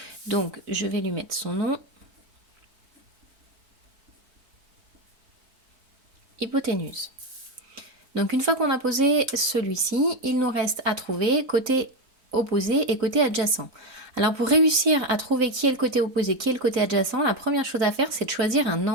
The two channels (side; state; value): left; late; 4.0 ms